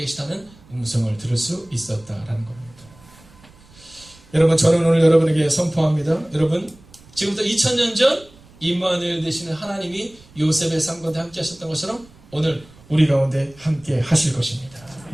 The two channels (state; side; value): noise; right; rumble, 25 dB below the sound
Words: 계시다는 음성을 들을 수 있었다라는 겁니다. 여러분 저는 오늘 여러분에게 선포합니다. 여러분 지금부터 2000년 전 임마누엘 되시는 하나님이 요셉의 삶 가운데 함께 하셨던 것처럼 오늘 우리 가운데 함께 하실 것입니다.